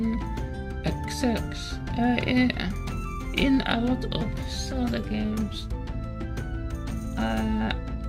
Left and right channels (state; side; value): identical; both; correlation 1.00